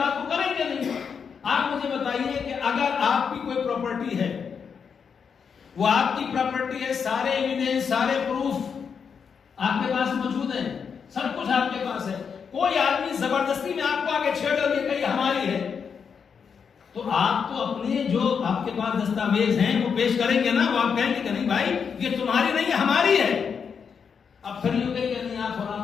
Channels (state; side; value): quieter; right; 6.5 dB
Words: کو کریں گے نہیں. آپ مجھے بتائیے کہ اگر آپ کی کوئی پراپرٹی ہے، وہ آپ کی پراپرٹی ہے، سارے ایویڈنس، سارے پروف آپ کے پاس موجود ہیں، سب کچھ آپ کے پاس ہے، کوئی آدمی زبردستی میں آپ کو آگے چھیڑ کر یہ کہی ہماری ہے، تو آپ تو اپنے جو آپ کے پاس دستاویز ہیں وہ پیش کریں گے نا. وہ آپ کہیں گے کہ نہیں بھائی یہ تمہاری نہیں ہے، ہماری ہے. اب پھر یہ کہیں کہ نہیں آپ